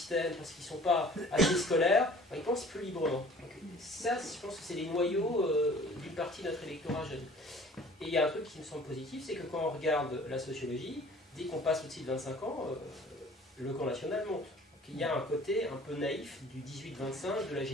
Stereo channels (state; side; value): normal; both; correlation 0.49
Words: parce qu'ils ne sont pas assez scolaires, ils pensent plus librement. Donc, ça, je pense que c'est les noyaux d'une partie de notre électorat jeune. Et il y a un truc qui me semble positif, c'est que quand on regarde la sociologie, dès qu'on passe au-dessus de 25 ans, le camp national monte. Donc, il y a un côté un peu naïf du 18-25, de la